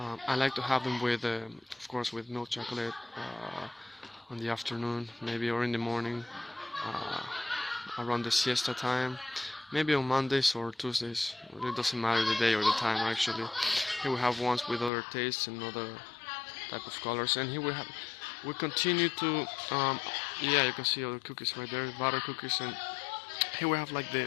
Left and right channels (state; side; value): drops out; right; at 14.9 s